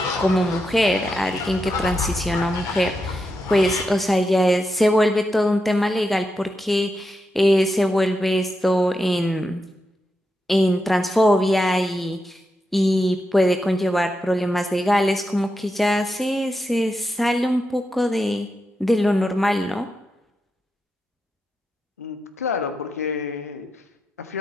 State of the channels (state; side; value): normal; both; correlation 0.86